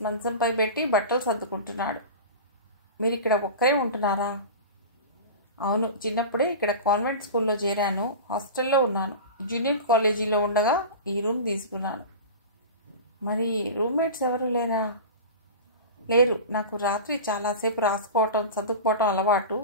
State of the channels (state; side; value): inverted; both; correlation -0.31